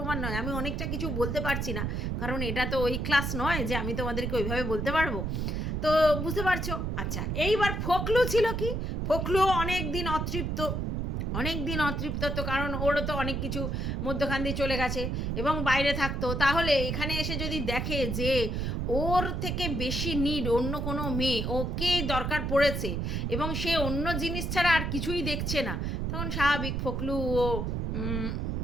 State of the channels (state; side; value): noise; right; rumble, 1 dB below the sound